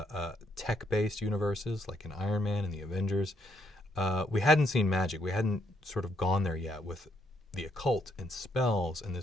tech-based universes like in Iron Man and the Avengers. We hadn't seen magic. We hadn't sort of gone there yet with the occult and spells and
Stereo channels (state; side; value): normal; both; correlation 0.72